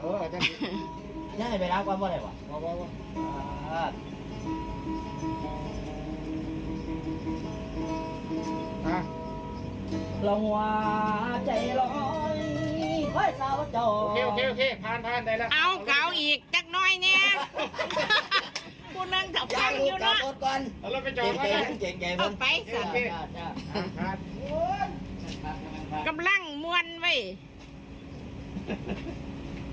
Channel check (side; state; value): both; identical; correlation 1.00